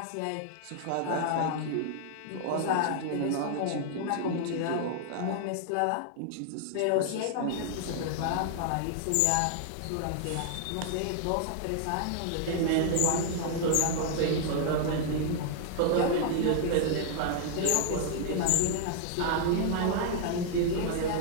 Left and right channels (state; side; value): different; both; correlation -0.01